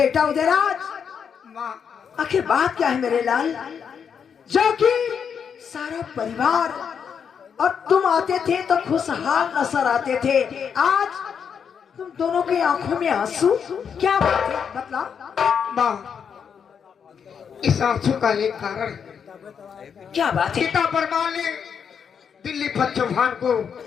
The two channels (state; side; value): quieter; right; 7.1 dB